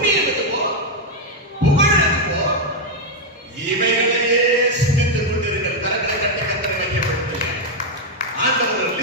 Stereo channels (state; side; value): normal; both; correlation 0.01